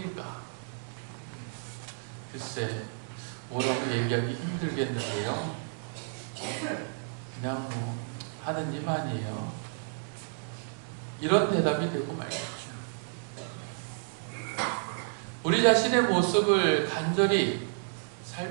글쎄, 뭐라고 얘기하기 힘들겠는데요. 그냥 하느님 아니에요. 이런 대답이 되고 말겠죠. 우리 자신의 모습을 간절히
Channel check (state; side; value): silent; left; digital silence